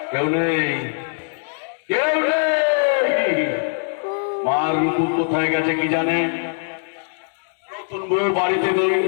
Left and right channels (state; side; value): silent; right; digital silence